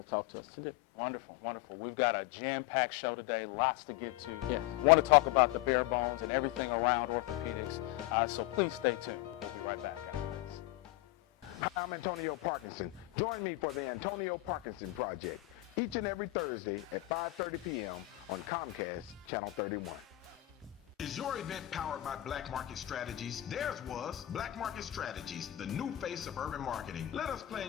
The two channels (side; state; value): right; quieter; 17.0 dB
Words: to talk to us today. Wonderful, wonderful. We've got a jam-packed show today, lots to get to. Yes. Want to talk about the bare bones and everything around orthopedics, so please stay tuned. We'll be right back after this. Hi, I'm Antonio Parkinson. Join me for the Antonio Parkinson Project each and every Thursday at 5:30 p.m. on Comcast Channel 31. Is your event powered by Black Market Strategies? Theirs was Black Market Strategies, the new face of urban marketing. Let us